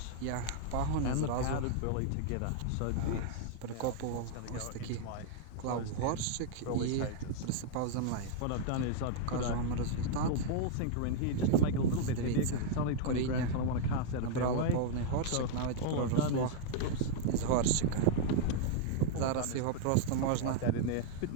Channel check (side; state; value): both; different; correlation -0.01